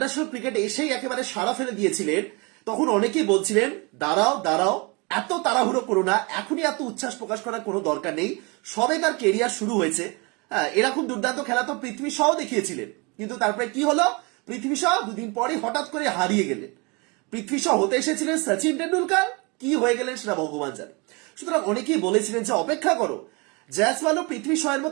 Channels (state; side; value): quieter; left; 29.0 dB